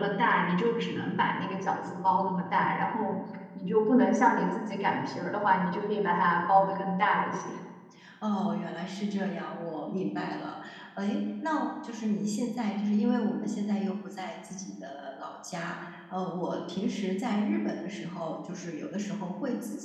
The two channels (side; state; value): both; identical; correlation 1.00